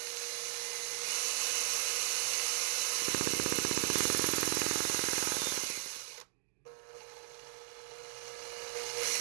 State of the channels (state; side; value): silent; left; digital silence